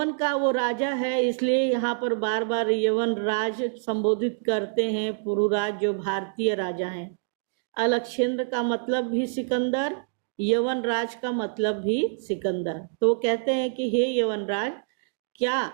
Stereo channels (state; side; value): silent; left; digital silence